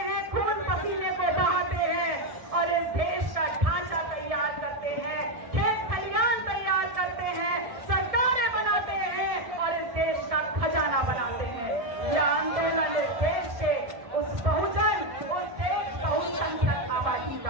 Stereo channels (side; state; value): left; late; 1.6 ms